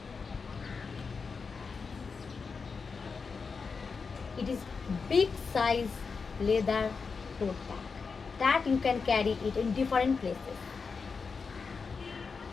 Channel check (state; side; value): quieter; right; 5.1 dB